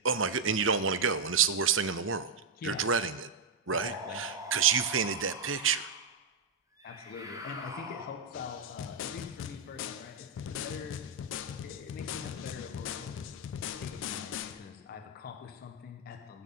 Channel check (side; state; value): left; quieter; 4.1 dB